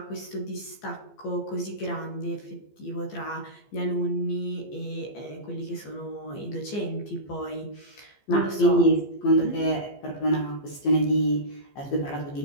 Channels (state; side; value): late; right; 15 ms